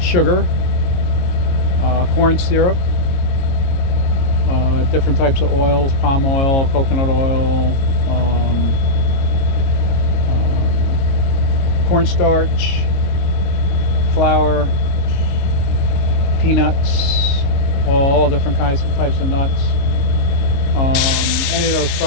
Sugar. Corn syrup. Different types of oils, palm oil, coconut oil, cornstarch, flour, peanuts, all different types of nuts. Any of those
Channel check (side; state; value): right; late; 22 ms